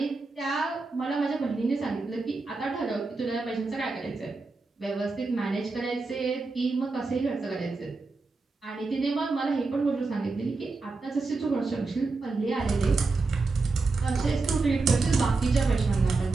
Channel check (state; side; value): quieter; left; 3.8 dB